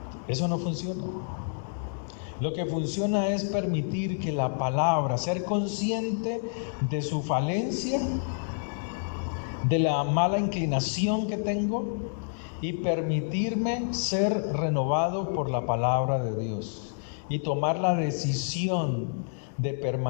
Eso no funciona. Lo que funciona es permitir que la palabra, ser consciente de su falencia, de la mala inclinación que tengo, y permitirme ser renovado por la palabra de Dios y tomar la decisión de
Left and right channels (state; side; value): silent; right; digital silence